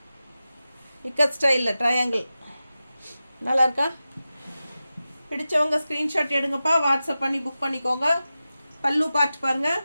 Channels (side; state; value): both; inverted; correlation -0.94